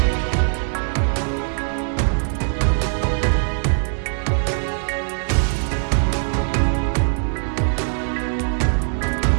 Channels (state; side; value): silent; left; digital silence